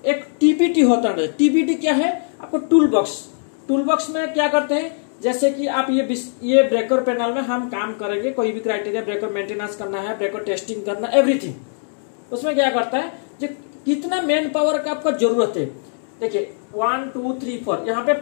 एक टीबीटी होता है। टीबीटी क्या है, आपको टूल बॉक्स। टूल बॉक्स में क्या करते हैं, जैसे कि आप ये ब्रेकर पैनल में हम काम करेंगे, कोई भी क्राइटेरिया, ब्रेकर मेंटेनेंस करना है, ब्रेकर टेस्टिंग करना, एवरीथिंग। उसमें क्या करता है, जो कितना मैन पावर का आपका जरूरत है, देखिए 1 2 3 4, यहाँ पे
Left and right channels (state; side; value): silent; right; digital silence